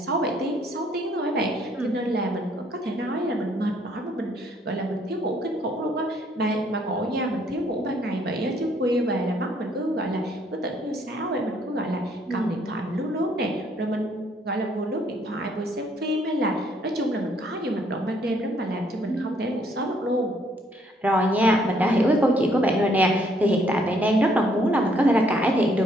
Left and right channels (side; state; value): both; normal; correlation 0.67